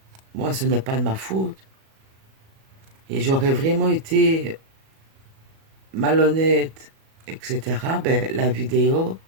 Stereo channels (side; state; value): left; late; 37 ms